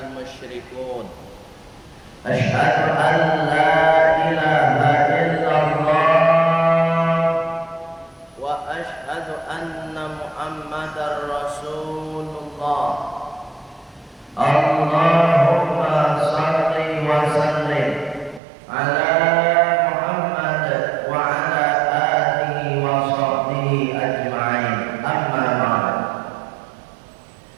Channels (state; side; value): drops out; left; at 18.4 s